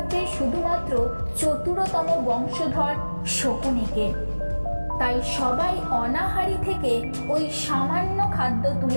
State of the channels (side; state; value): both; inverted; correlation -1.00